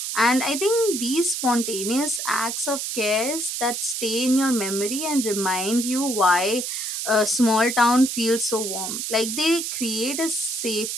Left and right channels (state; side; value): noise; right; hiss, 3 dB below the sound